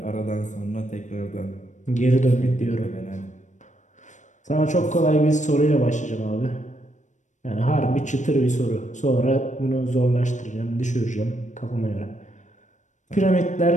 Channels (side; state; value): right; late; 0.35 ms